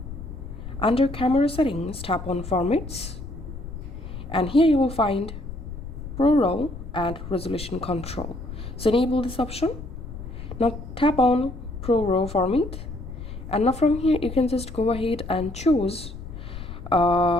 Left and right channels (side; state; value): left; noise; rumble, 10 dB below the sound